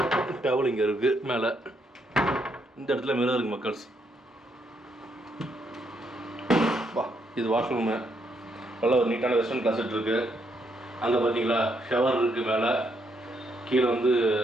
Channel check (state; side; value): normal; both; correlation 0.75